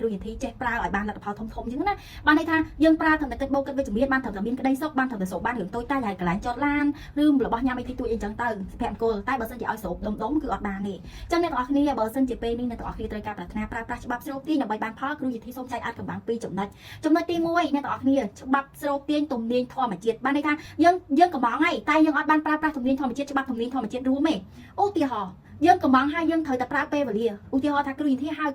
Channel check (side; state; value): both; identical; correlation 1.00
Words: ្រូយន្តធីចេះប្រើឲ្យបានលទ្ធផលធំអញ្ចឹងណាបានន័យថាយើងប្រើត្រឹមតែគិតបូកគិតវិជ្ជមានបានត្រឹមតែមានក្តីសុខបានត្រឹមតែសូបបានរឿងតូចតាចហើយកន្លែងចតឡានឬរបស់ញ៉ាំអីទីទួយអីចឹងទៅសុភមង្គលតែបើសិនជាឲ្យសូបដុំគឺអត់បានទេអញ្ចឹងអ្នកទាំងអស់គ្នាបើសិនជាពេលនេះអ្នកទាំងអស់គ្នាត្រូវការប្រាថ្នាប្រើប្រាស់ច្បាប់ស្រុកទាញដើម្បីបានផលគ្រូយន្តធីសូមចែកអាចកំបាំងពីចំណុចទី1អ្នកទាំងអស់គ្នាច្បាប់ស្រុកទាញទំនាញធម្មជាតិបានន័យថាយើងកំងហើយតែយើងអត់បានប្រើប្រាស់ទំនាញធម្មជាតិច្បាប់ទំនាញធម្មជាតិរួមទេឧទាហរណ៍យើងកំងហើយយើងត្រូវតែប្រើពេលវេលាឧទាហរណ៍ថាគ្រូយន្តធីហៅ